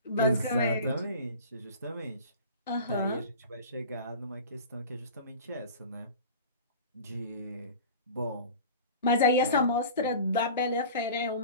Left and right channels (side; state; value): both; inverted; correlation -0.37